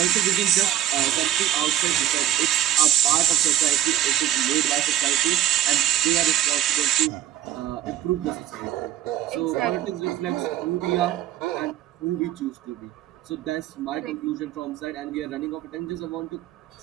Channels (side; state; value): left; quieter; 12.0 dB